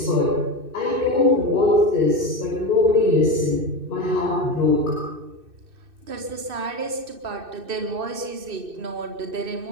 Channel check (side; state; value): left; late; 2.6 ms